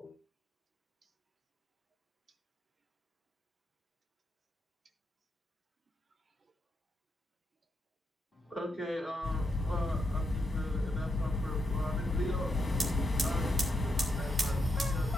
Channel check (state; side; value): normal; both; correlation 0.82